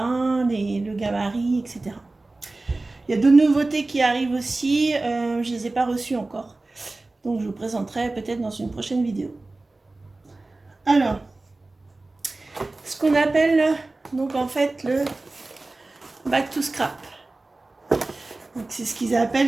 le gabarit, etc. Il y a d'autres nouveautés qui arrivent aussi, je ne les ai pas reçues encore. Donc je vous présenterai peut-être dans une prochaine vidéo. Alors, ce qu'on appelle donc en fait le Back to Scrap. C'est ce qu'ils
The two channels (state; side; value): quieter; left; 3.1 dB